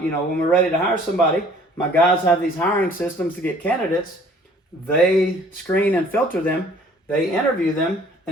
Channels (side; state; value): both; normal; correlation 0.55